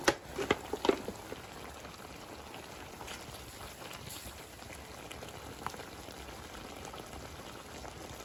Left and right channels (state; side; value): identical; both; correlation 1.00